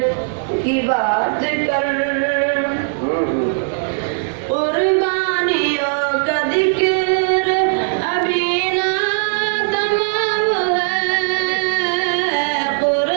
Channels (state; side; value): silent; left; 67 dB below the other